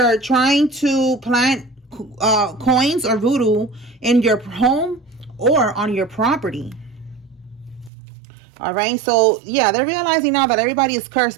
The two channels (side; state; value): left; drops out; at 7.9 s